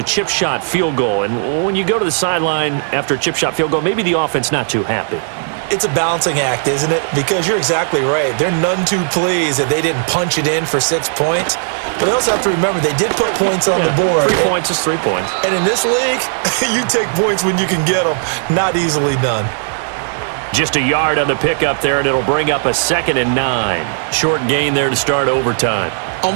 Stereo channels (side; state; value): left; silent; digital silence